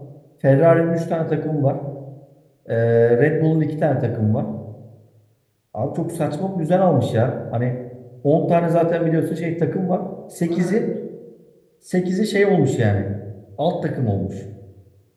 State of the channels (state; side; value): identical; both; correlation 1.00